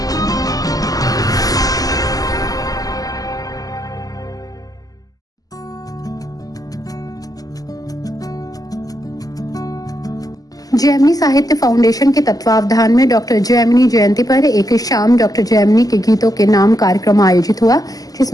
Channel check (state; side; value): late; right; 0.17 ms